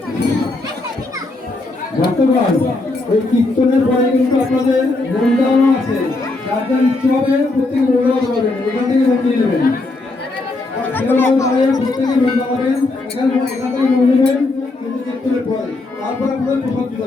ভক্তগণ, ওই কীর্তনের পরে কিন্তু আপনাদের মন্ডানো আছে, যার যার ইচ্ছে হবে প্রত্যেকে মন্ডল করবেন, ওখান থেকে মন্দির নেবেন। কেউ দাঁড়িয়ে প্রত্যেকে মন দাঁড়াবেন, এখানে এখান থেকে মন নেবেন কিন্তু কীর্তনের পরে, তারপর আপনাদের প্রসাদ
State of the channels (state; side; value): quieter; right; 3.1 dB